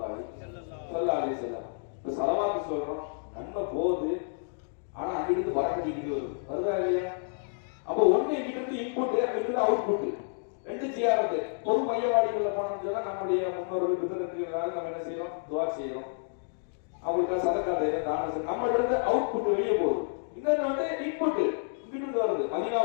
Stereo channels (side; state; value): right; silent; digital silence